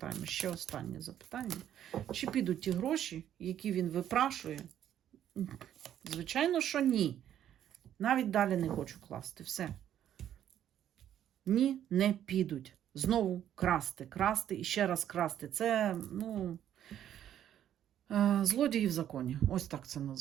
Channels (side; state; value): left; quieter; 10.7 dB